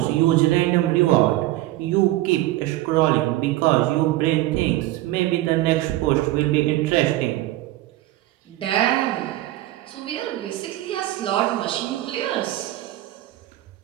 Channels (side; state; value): left; quieter; 16.3 dB